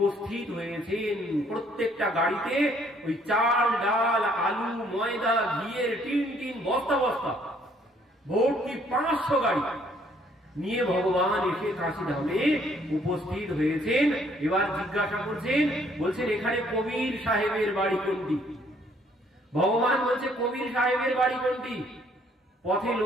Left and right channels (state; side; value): normal; both; correlation 0.64